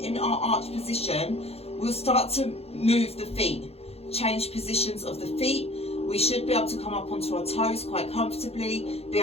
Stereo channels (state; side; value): late; right; 0.29 ms